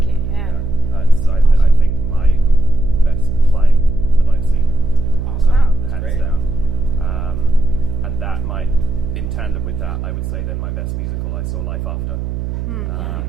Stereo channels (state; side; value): noise; right; hum, 5 dB below the sound